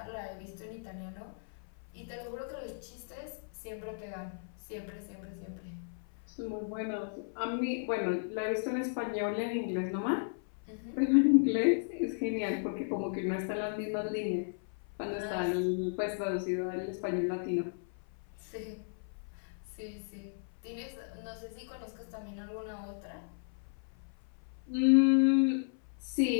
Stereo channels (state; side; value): silent; right; 54 dB below the other